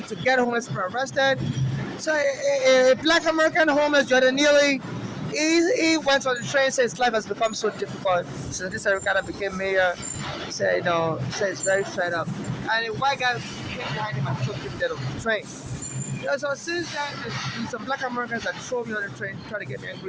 get homeless people arrested. So a black American homeless, Jordan Neely, he went on the train, said his life has become so difficult. So this Eric Adams became mayor. He said, he's very fed up. And a white guy came behind him and took him dead on the train. So since then, there's some black Americans that throw me on the train, try to get me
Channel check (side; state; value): both; identical; correlation 1.00